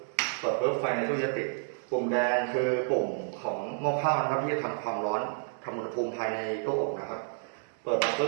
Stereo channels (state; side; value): silent; left; digital silence